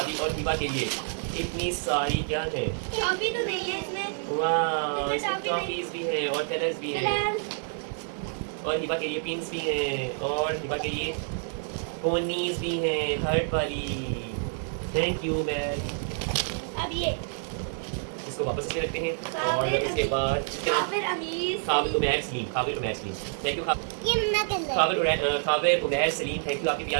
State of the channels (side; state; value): left; silent; digital silence